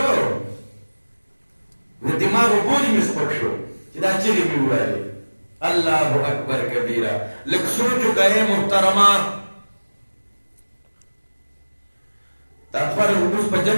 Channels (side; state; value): both; inverted; correlation -1.00